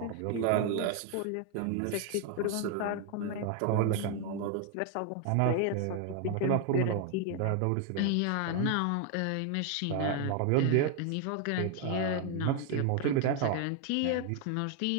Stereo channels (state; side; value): different; both; correlation 0.01